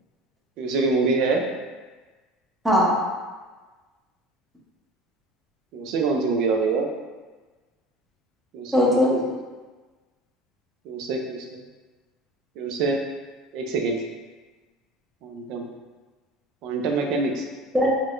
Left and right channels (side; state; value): both; normal; correlation 0.39